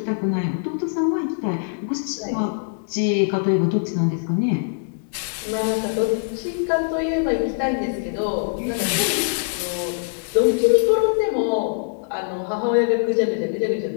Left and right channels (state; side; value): silent; right; digital silence